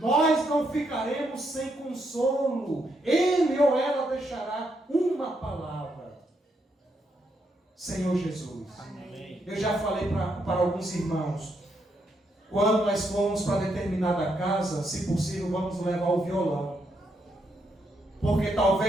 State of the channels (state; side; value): normal; both; correlation 0.78